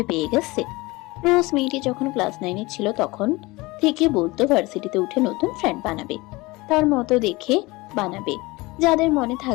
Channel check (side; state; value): right; quieter; 22.4 dB